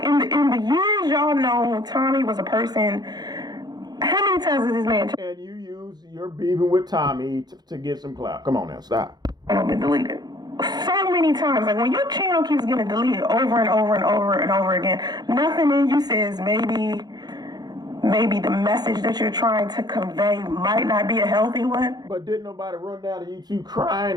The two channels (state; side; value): late; left; 0.20 ms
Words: in the years y'all know Tommy was a person. How many times has this man? And you use your beefing with Tommy to get some clout. Come on now, stop. I've been deleted so many times. Like, when your channel keeps getting deleted over and over and over and over again, nothing in you says maybe the message that you're trying to convey might not be a healthy one. But didn't nobody run down to YouTube crying